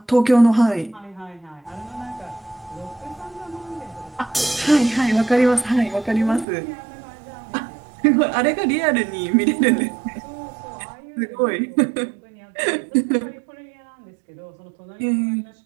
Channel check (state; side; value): drops out; left; at 6.5 s